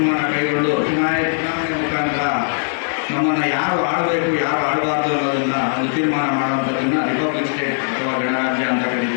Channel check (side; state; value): right; silent; 57 dB below the other